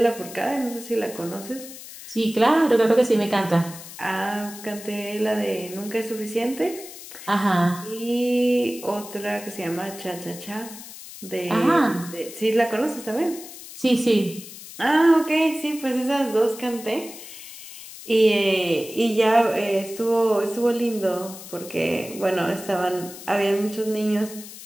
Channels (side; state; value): left; noise; hiss, 14 dB below the sound